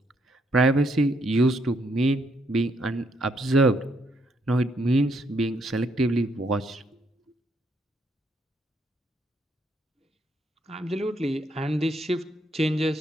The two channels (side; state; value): both; normal; correlation 0.74